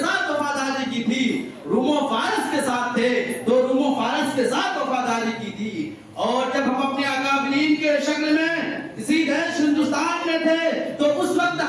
وفاداری کی تھی، روم و فارس کے ساتھ تھے تو روم و فارس کے ساتھ وفاداری کی تھی. اور جب ہم اپنے اکابرین کے شکل میں اسی دیش ہندوستان میں تھے تو اس وقت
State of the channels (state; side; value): identical; both; correlation 1.00